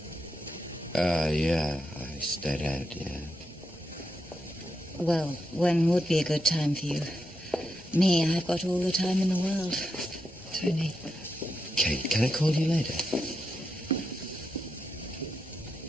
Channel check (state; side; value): normal; both; correlation 0.84